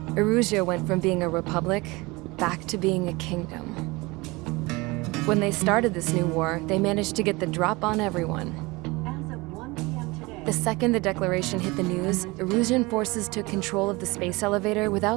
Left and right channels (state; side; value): quieter; left; 23.6 dB